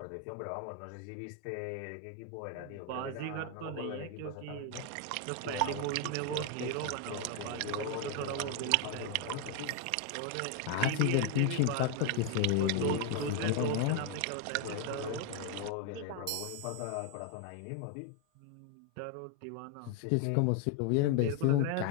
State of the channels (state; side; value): different; both; correlation 0.01